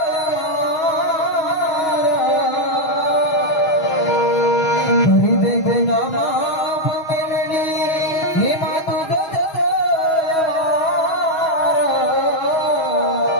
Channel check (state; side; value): late; right; 6.3 ms